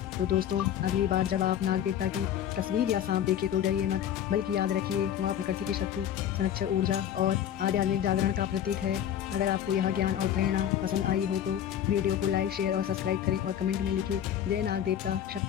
तो दोस्तों, अगली बार जब आप नाग देवता की तस्वीर या सांप देखें तो डरिए मत, बल्कि याद रखिए वह प्रकृति की शक्ति, संरक्षक ऊर्जा और आध्यात्मिक जागरण का प्रतीक है। अगर आपको यह ज्ञान और प्रेरणा पसंद आई हो तो वीडियो को लाइक, शेयर और सब्सक्राइब करें और कमेंट में लिखिए, जय नाग देवता,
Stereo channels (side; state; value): right; quieter; 10.2 dB